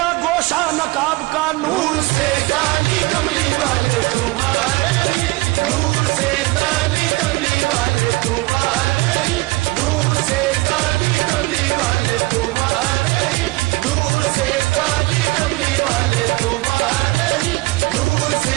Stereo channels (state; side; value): quieter; left; 22.3 dB